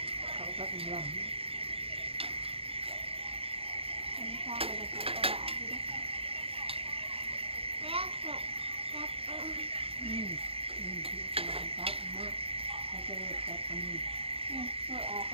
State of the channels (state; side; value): late; left; 0.27 ms